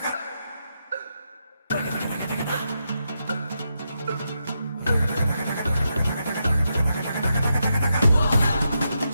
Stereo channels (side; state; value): both; inverted; correlation -0.84